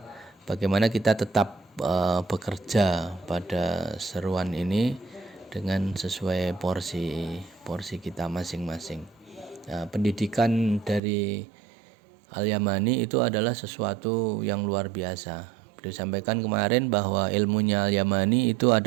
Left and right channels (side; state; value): left; drops out; at 11.0 s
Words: bagaimana kita tetap bekerja pada seruan ini dengan sesuai porsi kita masing-masing. Nah, pendidikan dari Al-Yamani itu adalah sesuatu yang luar biasa. Beliau sampaikan kemarin bahwa ilmunya Al-Yamani itu